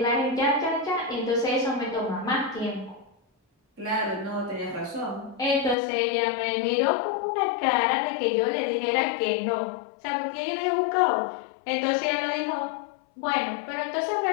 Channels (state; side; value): drops out; right; at 5.8 s